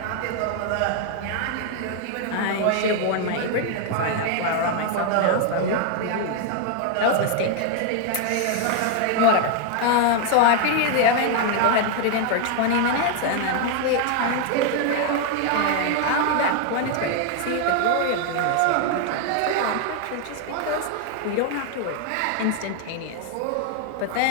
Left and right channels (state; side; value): different; both; correlation 0.00